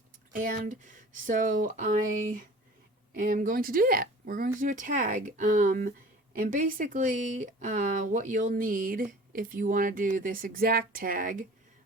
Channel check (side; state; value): both; normal; correlation 0.44